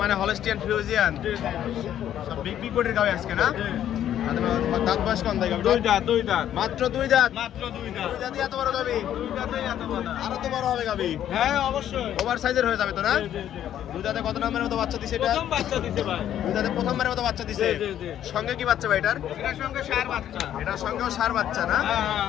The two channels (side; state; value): right; quieter; 10.9 dB